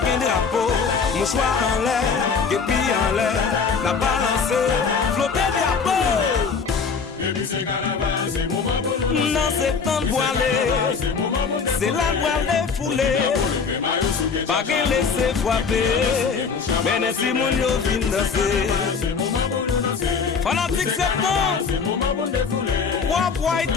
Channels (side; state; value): right; quieter; 5.5 dB